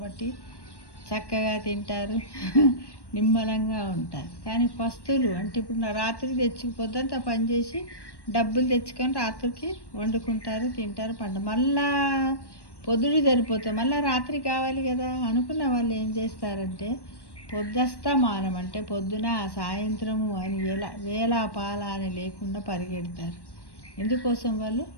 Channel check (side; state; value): right; late; 1.1 ms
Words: చక్కగా తింటారు, నిమ్మలంగా ఉంటారు. కానీ పస్తులు అంటే ఇప్పుడు రాత్రికి తెచ్చుకుపోద్దంతా పనిచేసి డబ్బులు తెచ్చుకొని రాత్రికి వండుకుంటారు, తింటారు, మళ్ళా పొద్దుడు సరిపోతుంది, మళ్ళీ రాత్రి కావాలి కదా అనుకున్న వాళ్ళు ఏం చేస్తారంటే పొద్దస్తమానం అంటే పొద్దున సాయంత్రము అని వేళ పాల అని లేకుండా పరిగెడతారు. ఎందుకోసం? వాళ్ళు